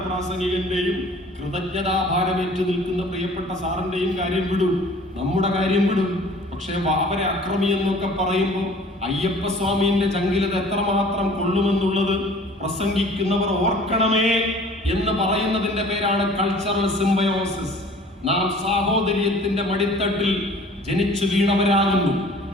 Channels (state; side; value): normal; both; correlation 0.49